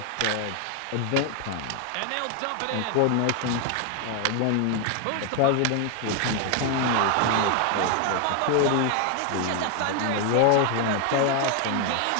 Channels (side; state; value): both; different; correlation 0.01